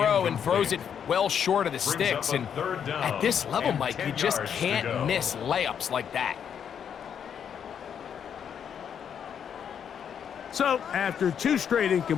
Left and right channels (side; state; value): right; quieter; 8.1 dB